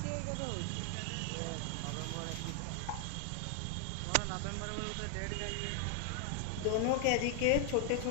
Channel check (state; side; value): different; both; correlation 0.00